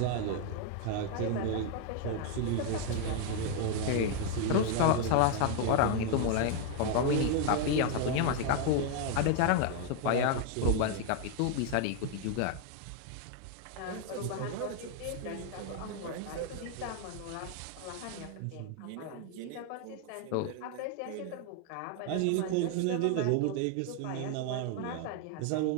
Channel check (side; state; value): both; different; correlation 0.01